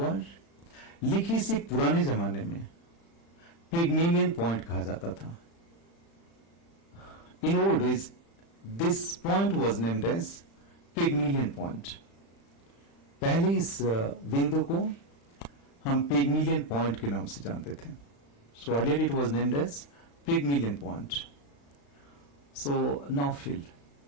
लिखी इसे पुराने जमाने में पिगमिलियन पॉइंट कहा जाता था. In old days this point was named as Pygmalion point. पहले इस बिंदु को हम पिगमिलियन पॉइंट के नाम से जानते थे. So earlier it was named as Pygmalion point. So now fill,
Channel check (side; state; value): right; late; 35 ms